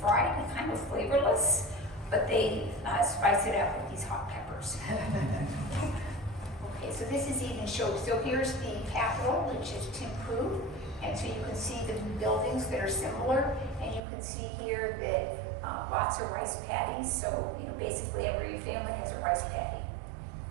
and kind of flavorless, but they spice it up with these hot peppers. Okay, so this is even shown. So here's the capital, which is Thimphu, and so you can see the buildings that are similar, and you can see here that lots of rice paddies. So basically every family has a rice paddy.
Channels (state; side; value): drops out; left; at 14.0 s